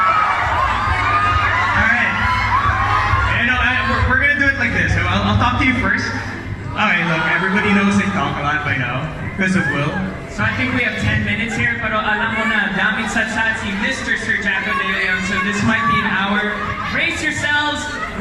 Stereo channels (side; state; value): both; identical; correlation 1.00